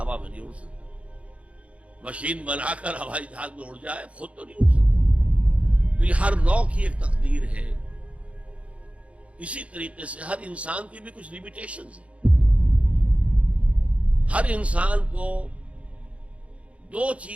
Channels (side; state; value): left; late; 0.063 ms